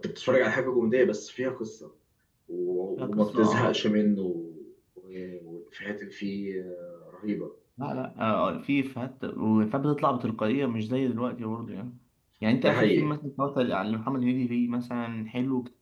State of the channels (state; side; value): identical; both; correlation 1.00